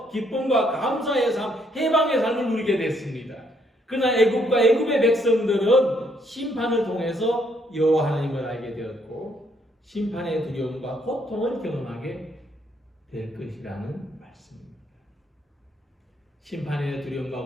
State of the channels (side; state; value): both; normal; correlation 0.70